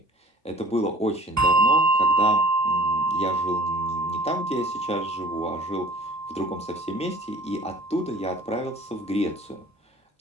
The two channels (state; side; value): normal; both; correlation 0.49